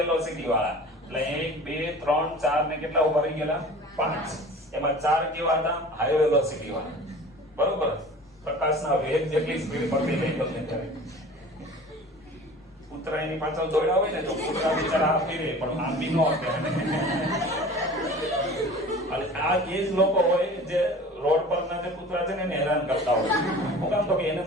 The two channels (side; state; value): both; normal; correlation 0.41